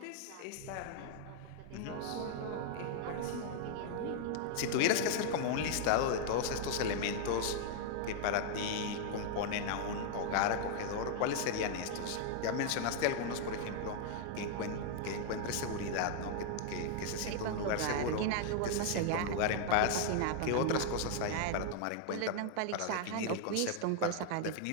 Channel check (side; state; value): both; different; correlation 0.00